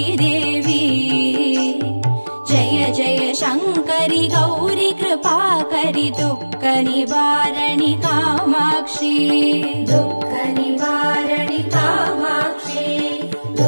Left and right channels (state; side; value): inverted; both; correlation -1.00